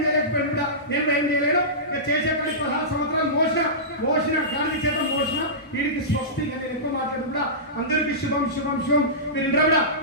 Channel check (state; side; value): normal; both; correlation -0.19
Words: చేయలేకపోయాడు కూడా. నేను ఏం చేయలేను. చేసే పని 16 సంవత్సరాలు మోసిన గాంధీ చేత మోసిన వీడికి స్వస్తి. నేను ఎక్కువ మాట్లాడు కూడా అందరికీ శుభం శుభం శుభం. మీరు ఇంట్లో కూడా